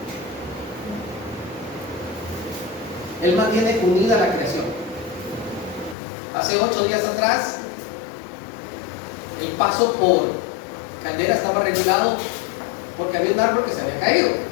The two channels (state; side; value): drops out; right; at 6.0 s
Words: Él mantiene unida la creación. Hace 8 días atrás, el paso por Caldera estaba regulado porque había un árbol que se había caído.